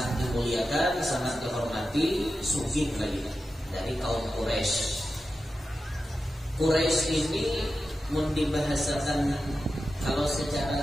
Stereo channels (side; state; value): both; normal; correlation 0.91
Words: dimuliakan, sangat dihormati, sugih lagi dari kaum Quraisy. Quraisy ini mun dibahasakan kalau